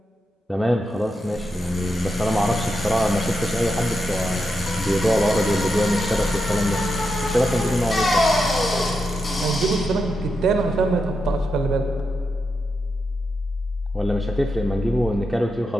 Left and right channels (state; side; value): normal; both; correlation 0.86